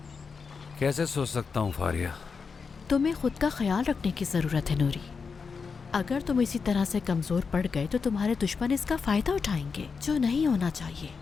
कैसे सो सकता हूँ फारिया? तुम्हें खुद का ख्याल रखने की जरूरत है नूरी। अगर तुम इसी तरह से कमजोर पड़ गए तो तुम्हारे दुश्मन इसका फायदा उठाएंगे, जो नहीं होना चाहिए।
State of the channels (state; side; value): quieter; right; 5.3 dB